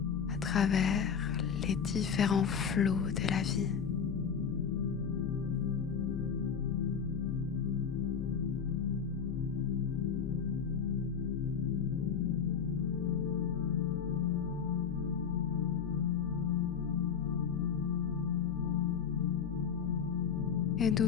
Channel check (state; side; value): quieter; right; 7.0 dB